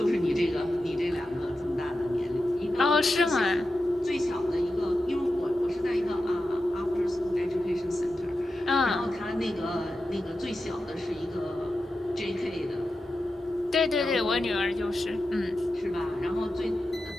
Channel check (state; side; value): normal; both; correlation 0.91